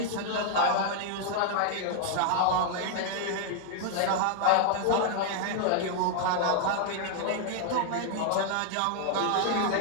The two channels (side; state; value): both; different; correlation 0.00